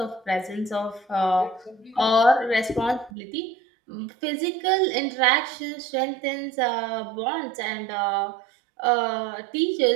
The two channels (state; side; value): drops out; left; at 3.1 s